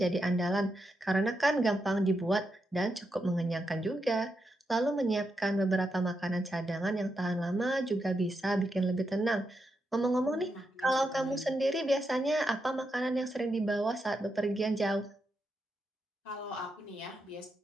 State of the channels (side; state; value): both; normal; correlation 0.84